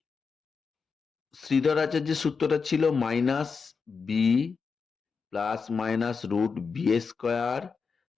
শ্রীধর আচার্যের সূত্রটা ছিল minus b plus minus root b square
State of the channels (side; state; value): right; quieter; 5.3 dB